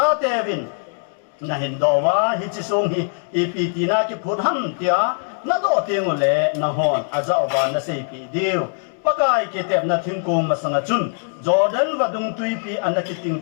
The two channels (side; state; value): right; silent; 65 dB below the other